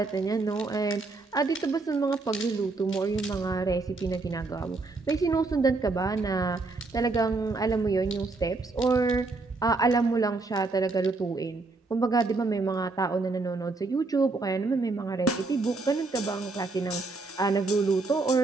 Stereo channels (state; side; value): quieter; left; 3.6 dB